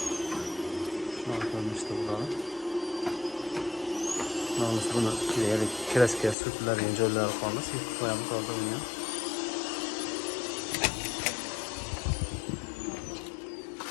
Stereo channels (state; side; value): drops out; right; at 6.4 s